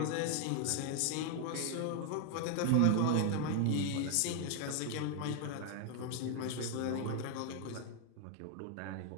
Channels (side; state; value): both; different; correlation 0.00